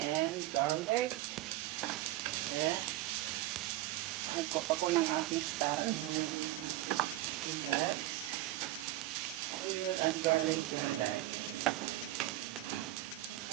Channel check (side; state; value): left; quieter; 16.0 dB